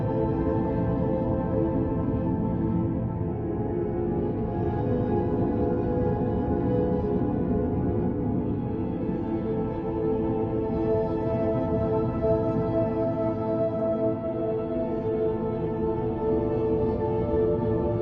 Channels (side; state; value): both; identical; correlation 1.00